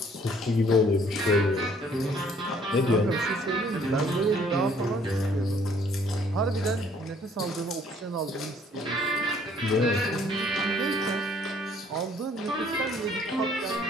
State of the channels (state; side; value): normal; both; correlation 0.60